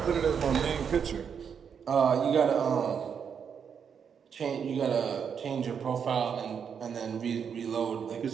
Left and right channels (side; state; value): left; quieter; 7.1 dB